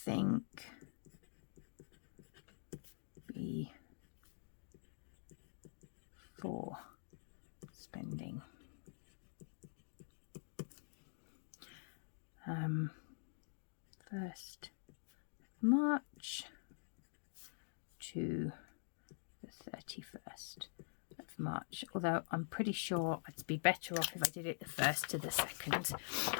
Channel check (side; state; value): right; silent; digital silence